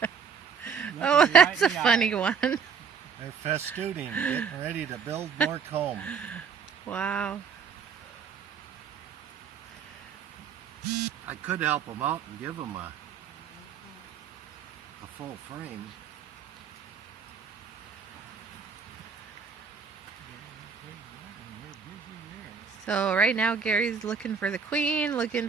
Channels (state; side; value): quieter; left; 6.3 dB